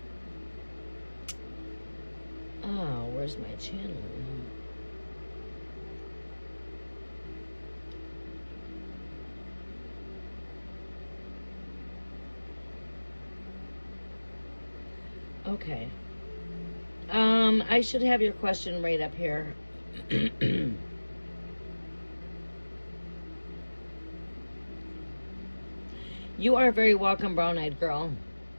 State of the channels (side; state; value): both; inverted; correlation -1.00